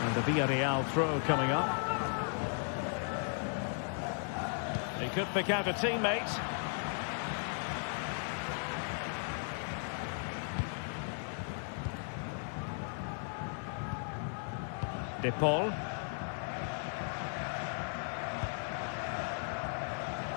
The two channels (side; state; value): right; silent; 54 dB below the other